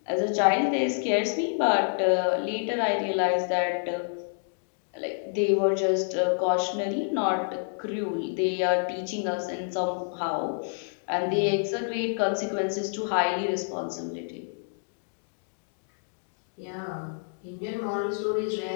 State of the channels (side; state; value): right; silent; digital silence